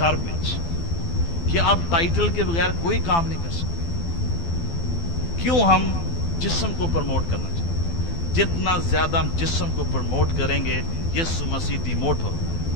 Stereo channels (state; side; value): late; right; 12 ms